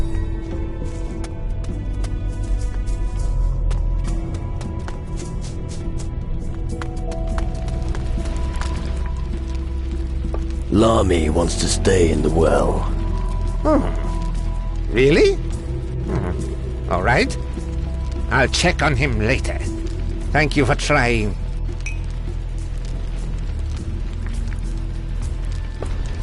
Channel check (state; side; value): identical; both; correlation 1.00